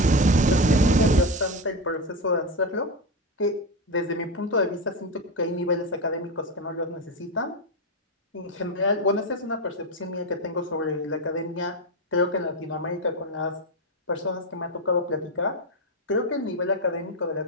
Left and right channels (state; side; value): normal; both; correlation 0.13